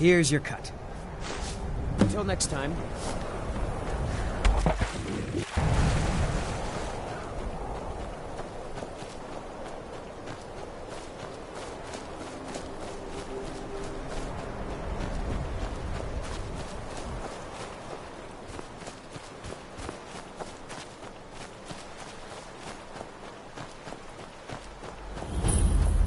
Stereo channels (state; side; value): identical; both; correlation 1.00